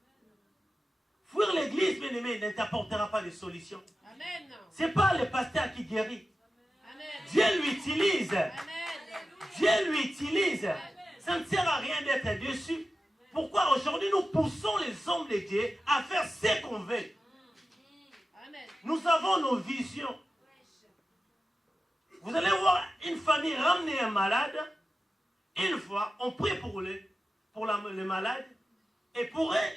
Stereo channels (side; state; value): both; normal; correlation 0.93